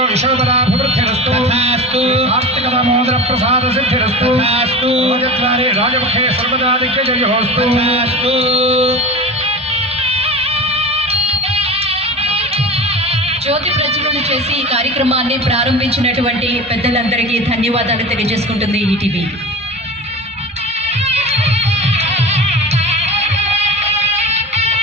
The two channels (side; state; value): both; normal; correlation 0.31